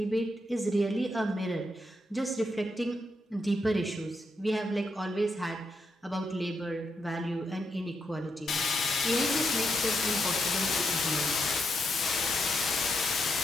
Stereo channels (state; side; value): normal; both; correlation 0.81